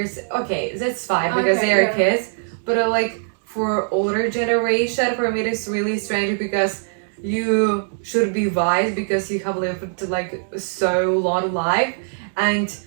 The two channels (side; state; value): left; silent; digital silence